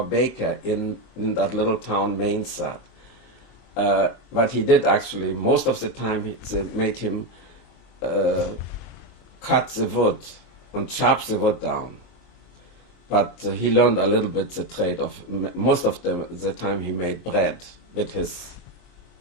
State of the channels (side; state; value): right; late; 23 ms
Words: baker in that little town, Mainzat. But he did actually, most of the time, they made him cut the wood and chop the wood down. But he learned a little bit the trade of, most of the time he made bread with his